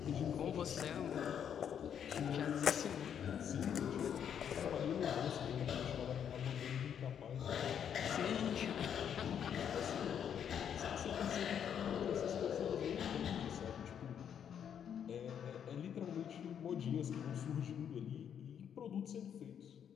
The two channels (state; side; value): quieter; right; 8.6 dB